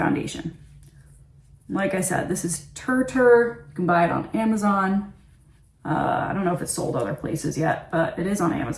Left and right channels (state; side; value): identical; both; correlation 1.00